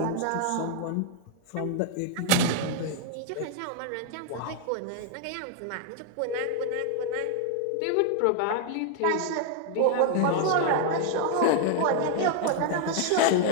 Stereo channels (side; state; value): both; different; correlation 0.00